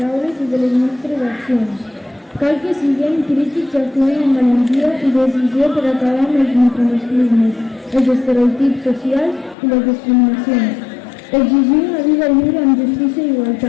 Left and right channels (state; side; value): drops out; right; at 9.6 s